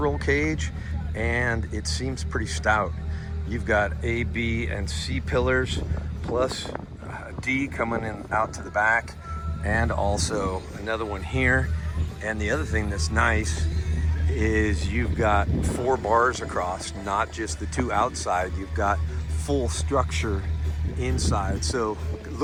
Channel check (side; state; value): both; identical; correlation 1.00